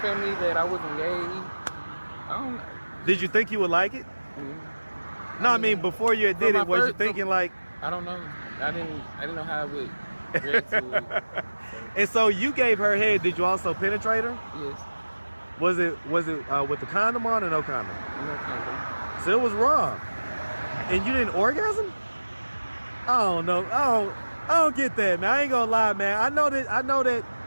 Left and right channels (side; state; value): both; inverted; correlation -1.00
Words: that I wasn't gay. I don't know. Did you think you would like it? Mm-hmm. No, I mean before you did it, was you thinking I don't know. I didn't know how I would react to it. And so you gave her head. Did you also penetrate her? Yes. Was it with the condom on or no condom? No condom. So it was raw. And you didn't orgasm? I don't know. I don't get that, man. I ain't gonna lie, man. I know that.